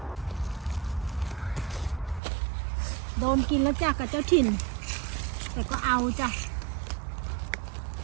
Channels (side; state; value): left; drops out; at 2.2 s